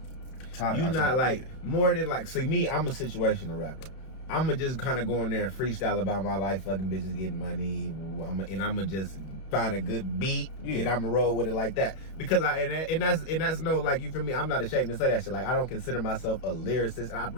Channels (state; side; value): late; right; 31 ms